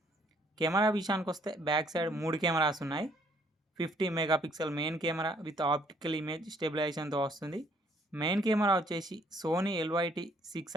కెమెరా విషయానికి వస్తే బ్యాక్ సైడ్ 3 కెమెరాస్ ఉన్నాయి. 50 megapixel main camera with optical image స్టెబిలైజేషన్తో వస్తుంది. మెయిన్ కెమెరా వచ్చేసి సోనీ LYT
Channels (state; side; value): normal; both; correlation 0.64